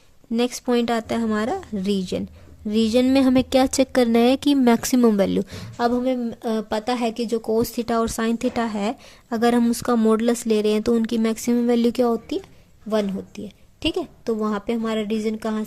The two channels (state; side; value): identical; both; correlation 1.00